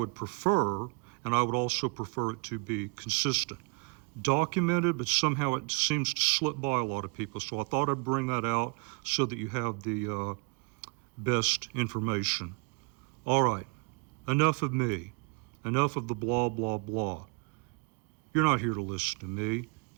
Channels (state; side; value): quieter; left; 31.3 dB